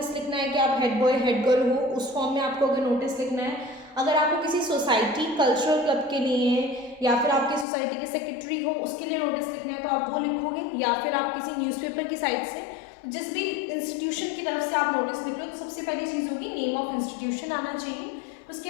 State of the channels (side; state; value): right; drops out; at 7.7 s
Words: लिखना है कि आप हेड बॉय हेड गर्ल हो, उस फॉर्म में आपको अगर नोटिस लिखना है। अगर आपको किसी सोसाइटी कल्चरल क्लब के लिए या फिर आपकी सोसाइटी के सेक्रेटरी हो उसके लिए नोटिस लिखना है तो आप वो लिखोगे, या फिर आप किसी न्यूज़पेपर की साइट से जिस भी इंस्टीट्यूशन की तरफ से आप नोटिस लिख रहे हो तो सबसे पहली चीज़ होगी नेम ऑफ इंस्टीट्यूशन आना चाहिए। उसके